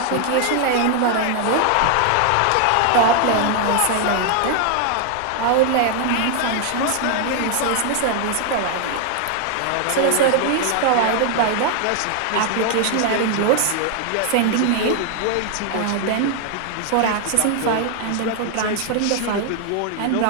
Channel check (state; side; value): different; both; correlation 0.00